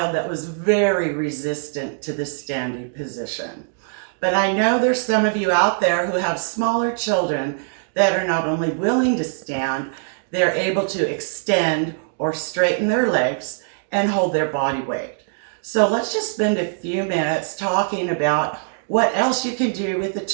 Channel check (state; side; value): silent; left; digital silence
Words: that was very resistant to the standing position. But I know there's some of you out there who have smaller children that are not only willing to stand, they're able to extend or straighten their legs and hold their body weight. So let's just spend a few minutes talking about what else you can do with a